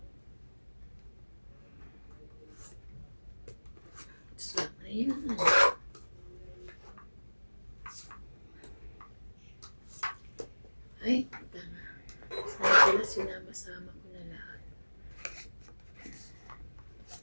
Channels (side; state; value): both; inverted; correlation -1.00